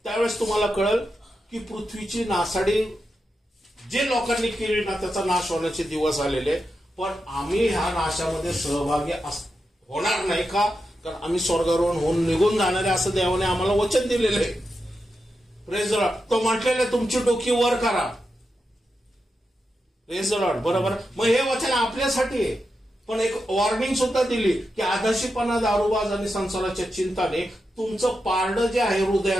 त्यावेळेस तुम्हाला कळल की पृथ्वीची नासाडी जे लोकांनी केली ना त्याचा नाश होण्याचे दिवस आलेले. पण आम्ही ह्या नाशामध्ये सहभागी होणार नाही का? कारण आम्ही स्वर्गारोहण होऊन निघून जाणारे असं देवाने आम्हाला वचन दिलेलं आहे. Praise the Lord. तो म्हटलेलं आहे तुमची डोकी वर करा. Praise the lord. बरोबर? मग हे वचन आपल्यासाठी आहे, पण एक वॉर्निंग सुद्धा दिली की आधाशीपणा, दारूबाज आणि संसाराच्या चिंताने तुमचं पारडं जे आहे,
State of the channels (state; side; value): normal; both; correlation 0.88